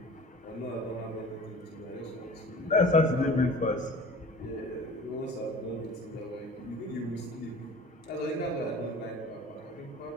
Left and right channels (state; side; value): normal; both; correlation 0.42